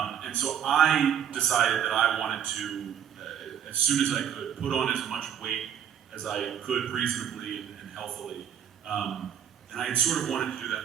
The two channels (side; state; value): left; quieter; 9.0 dB